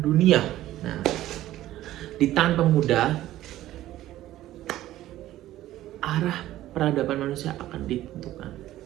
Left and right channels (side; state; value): left; quieter; 14.4 dB